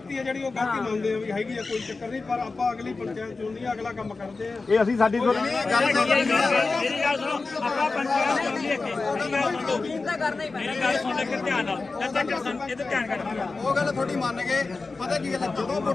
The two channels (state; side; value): quieter; right; 3.9 dB